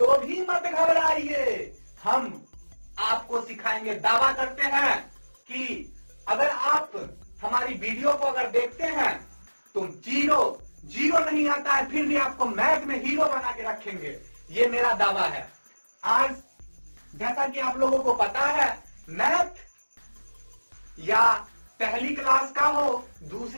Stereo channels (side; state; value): both; inverted; correlation -1.00